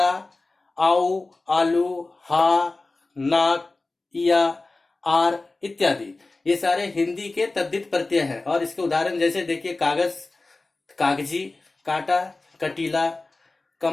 आउ, आलू, हा, नाक, इया, आर इत्यादि, ये सारे हिंदी के तद्धित प्रत्यय हैं। और इसके उदाहरण जैसे देखिए कागज, कागजी, काटा, कटीला।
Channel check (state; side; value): quieter; right; 3.3 dB